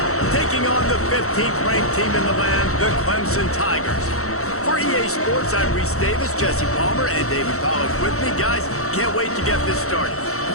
taking on the 15th ranked team in the land, the Clemson Tigers. For EA Sports, I'm Reese Davis, Jesse Palmer, and David Pollack with me. Guys, can't wait to get this started.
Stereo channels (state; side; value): late; right; 0.64 ms